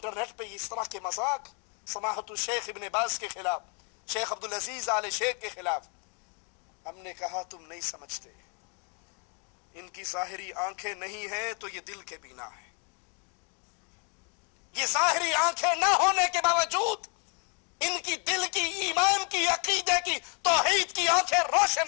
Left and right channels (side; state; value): right; quieter; 37.5 dB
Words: پہ اس طرح کے مذاق سماحت الشیخ ابن باز کے خلاف, شیخ عبدالعزیز آل شیخ کے خلاف. ہم نے کہا تم نہیں سمجھتے, ان کی ظاہری آنکھیں نہیں ہیں تو یہ دل کے بینا ہے. یہ ظاہری آنکھیں نہ ہونے کے باوجود ان کی دل کی, ایمان کی, عقیدے کی, توحید کی آنکھیں